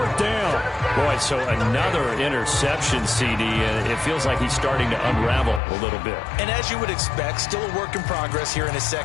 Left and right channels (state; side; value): drops out; right; at 5.6 s